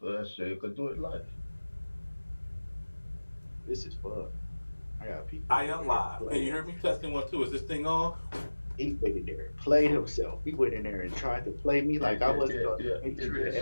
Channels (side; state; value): both; inverted; correlation -1.00